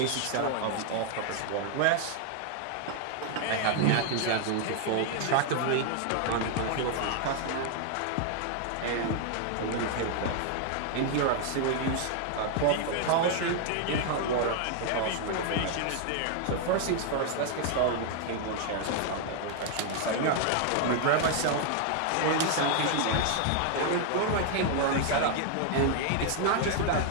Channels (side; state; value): both; different; correlation 0.00